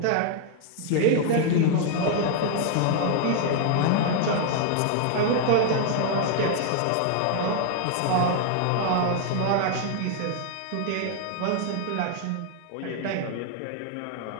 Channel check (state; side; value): different; both; correlation 0.00